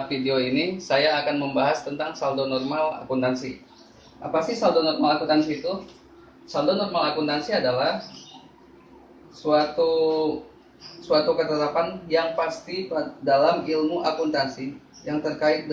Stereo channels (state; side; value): identical; both; correlation 1.00